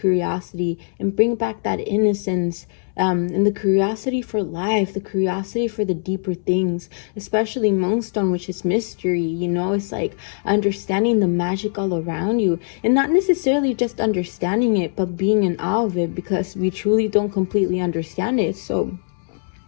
and bring back that innocence, and the curiosity for life, the curiosity for the deeper things, especially Moonstone, which is mystery. It's like understanding the magic all around you, and not necessarily just understanding it, but being in awe of it, because we truly don't completely understand it. So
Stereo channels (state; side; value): silent; right; 65 dB below the other